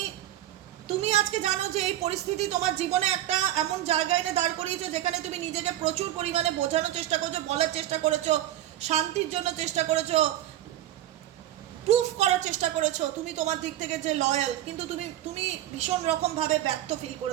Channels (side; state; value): left; quieter; 13.3 dB